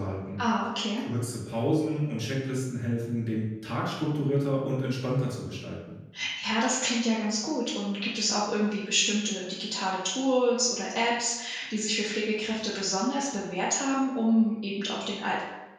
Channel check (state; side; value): identical; both; correlation 1.00